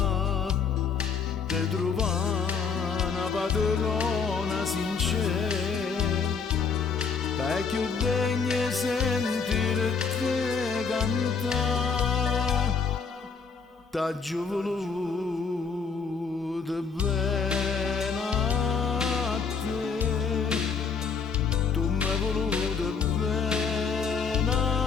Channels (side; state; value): right; quieter; 5.6 dB